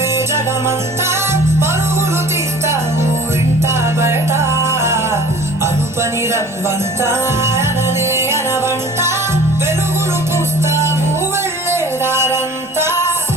జగమంతా పరుగులు తీస్తావు ఇంట బయట. అనుపని రవ్వంతా అననే అనవంట వెలుగులు పూస్తావు వెళ్ళేదారంతా.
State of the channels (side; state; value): both; normal; correlation 0.46